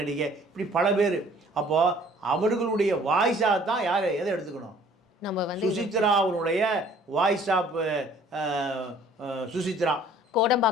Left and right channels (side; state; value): both; normal; correlation 0.55